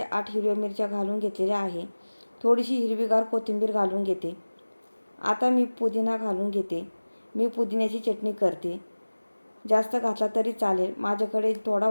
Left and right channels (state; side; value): inverted; both; correlation -1.00